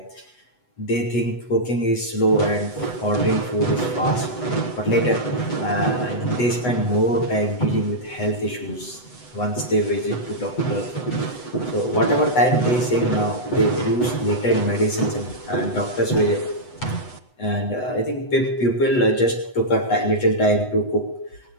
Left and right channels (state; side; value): late; right; 8.0 ms